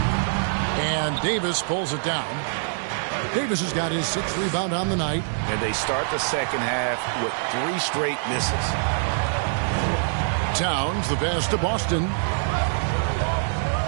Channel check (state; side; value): silent; left; digital silence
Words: And Davis pulls it down. Davis has got his 6th rebound on the night. And they start the second half with 3 straight misses. Towns, the pass to Boston.